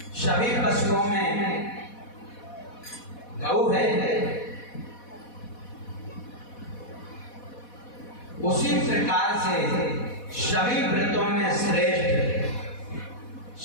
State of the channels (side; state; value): right; late; 4.1 ms